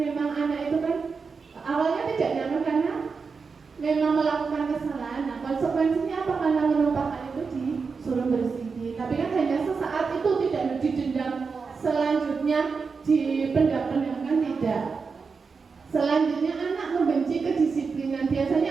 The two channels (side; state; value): left; quieter; 5.1 dB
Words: anak itu kan awalnya tidak nyaman karena memang melakukan kesalahan. Nah konsekuensinya apa? Karena menumpahkan itu disuruh bersihin, tapi kan hanya sesaat, itu tidak didendam selanjutnya dipendam-pendamkan, tidak. Selanjutnya anak membenci kedisiplinan. Biasanya